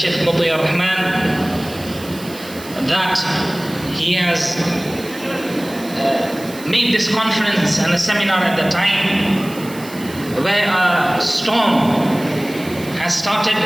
Muti Ar-Rahman, that he has made this conference and a seminar at the time where a storm has started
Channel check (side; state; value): right; noise; hiss, 17 dB below the sound